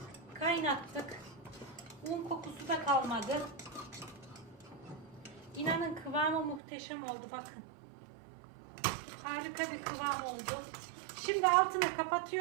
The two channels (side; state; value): left; drops out; at 6.6 s